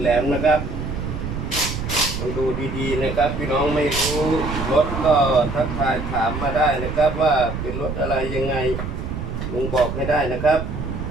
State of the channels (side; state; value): right; noise; rumble, 5 dB below the sound